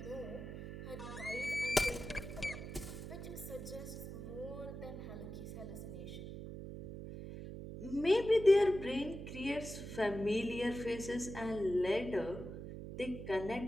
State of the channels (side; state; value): right; noise; hum, 9 dB below the sound